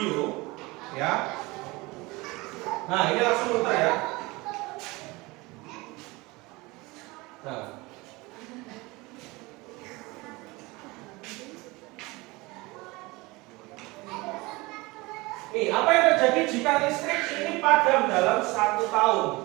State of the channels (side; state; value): left; quieter; 23.1 dB